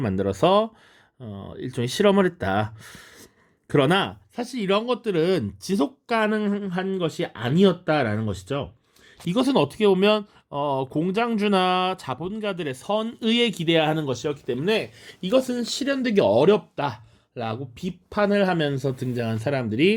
만들어서 일종의 실험을 했다. 그러나 사실 이런 것들은 지속 가능한 것이 아니었다라는 것이죠. 이것은 어떻게 보면 공장주나 자본가들의 선의에 기대야 하는 것이었기 때문에 이것은 실현되기 어렵다라고 비판을 하면서 등장한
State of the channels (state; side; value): identical; both; correlation 1.00